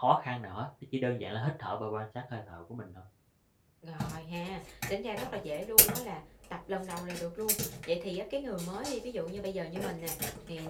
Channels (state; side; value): identical; both; correlation 1.00